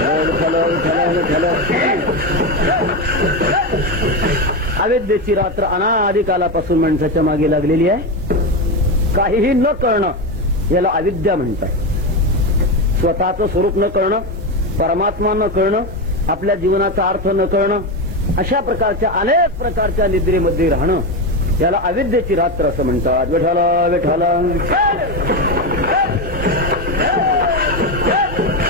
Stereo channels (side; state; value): both; normal; correlation 0.14